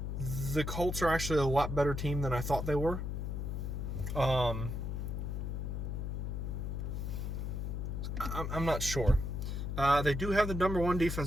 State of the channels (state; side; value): noise; left; hum, 3 dB below the sound